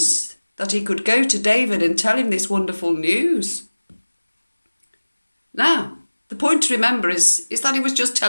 that he could go to David and tell him this wonderful news. Now, the point to remember is that he was just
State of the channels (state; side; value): inverted; both; correlation -1.00